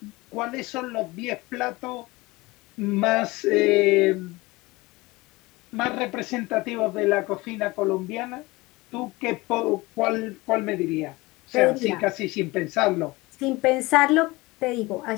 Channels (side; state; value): right; quieter; 22.0 dB